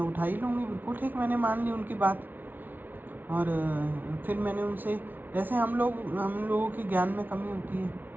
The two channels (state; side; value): late; left; 0.087 ms